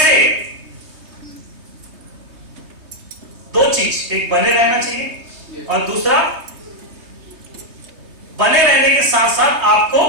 दो चीज, एक बने रहना चाहिए और दूसरा बने रहने के साथ साथ आपको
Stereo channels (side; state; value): left; late; 3.2 ms